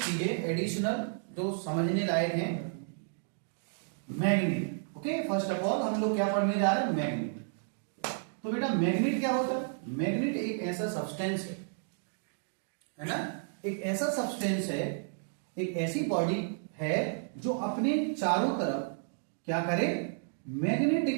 चीजें एडिशनल जो समझने लायक हैं। Magnet, okay, first of all हम लोग क्या पढ़ने जा रहे हैं, मैग्नेट। तो बेटा मैग्नेट क्या होता है? मैग्नेट एक ऐसा सब्सटेंस है ना, एक ऐसा सब्सटेंस है, एक ऐसी बॉडी है जो अपने चारों तरफ क्या करे,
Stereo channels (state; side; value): silent; left; digital silence